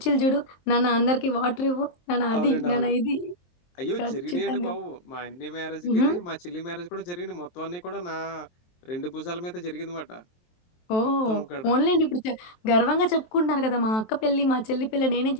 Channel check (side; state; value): right; late; 23 ms